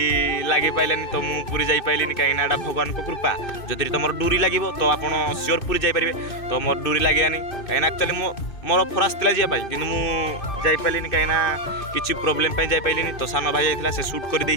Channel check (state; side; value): late; right; 2.6 ms